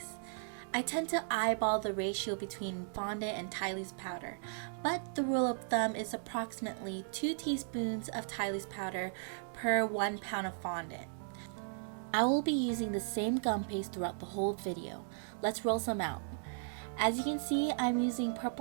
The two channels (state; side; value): silent; left; digital silence